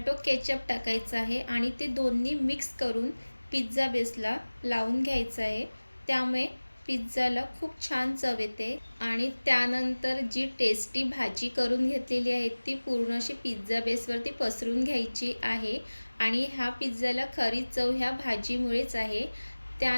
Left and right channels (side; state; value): both; inverted; correlation -1.00